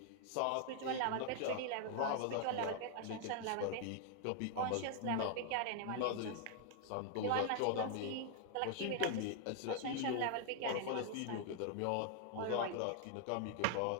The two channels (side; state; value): both; different; correlation 0.00